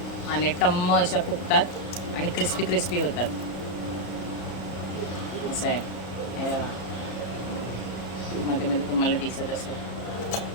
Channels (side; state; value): right; late; 34 ms